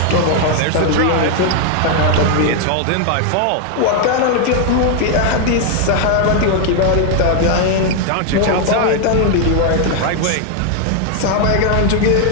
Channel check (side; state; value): both; different; correlation 0.00